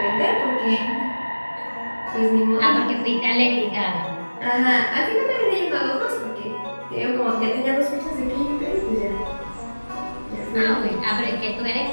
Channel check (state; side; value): inverted; both; correlation -1.00